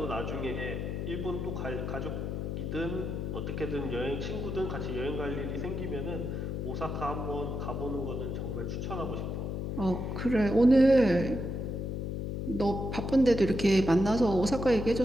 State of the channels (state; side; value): noise; left; hum, 3 dB below the sound